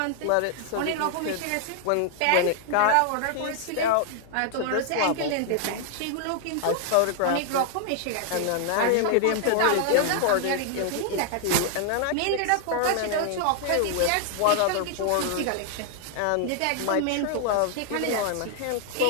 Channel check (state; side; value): different; both; correlation 0.00